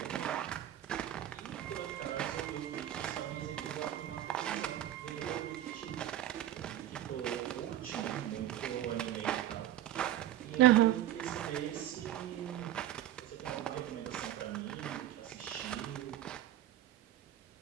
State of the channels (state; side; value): quieter; left; 12.5 dB